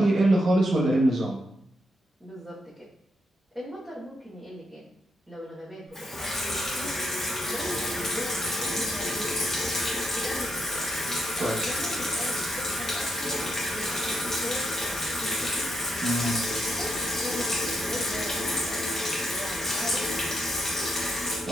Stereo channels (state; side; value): normal; both; correlation 0.80